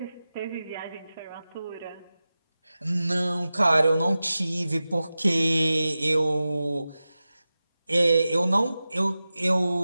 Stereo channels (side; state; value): both; inverted; correlation -0.95